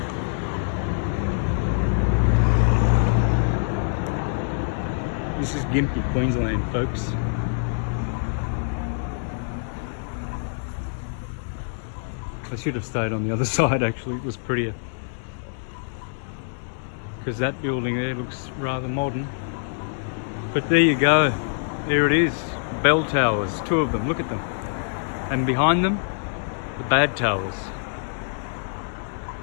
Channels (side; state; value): right; silent; digital silence